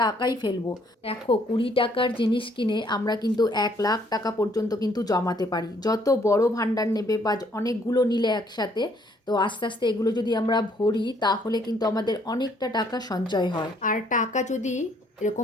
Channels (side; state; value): both; normal; correlation 0.65